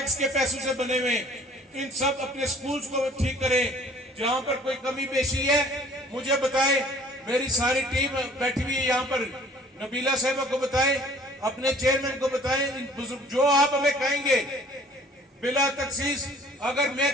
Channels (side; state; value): both; normal; correlation 0.53